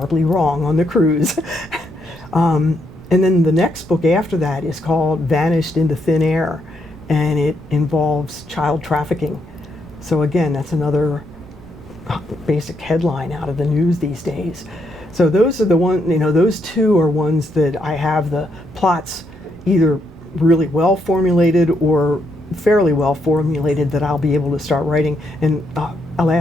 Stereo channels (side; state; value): right; noise; rumble, 25 dB below the sound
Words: wrong on the cruise. And then the next book after that is called Vanished into Thin Air, and it involves child trafficking. So again, that's another basic headline out of the news these days. So those are the those 2 are ones that I have the plots either really well formulated or fairly well formulated that I'll be able to start writing. And